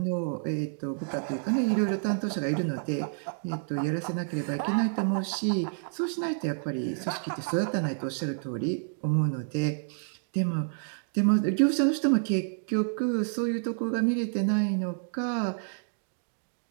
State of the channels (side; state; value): left; silent; digital silence